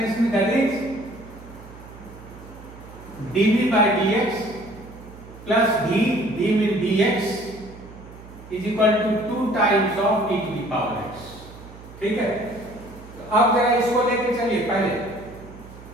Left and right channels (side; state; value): right; noise; hum, 18 dB below the sound